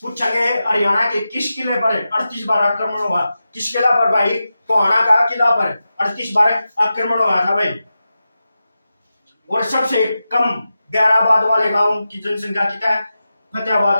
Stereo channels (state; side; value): inverted; both; correlation -0.92